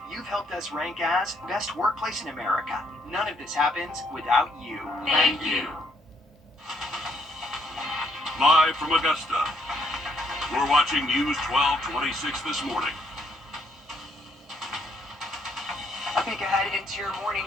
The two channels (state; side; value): normal; both; correlation 0.71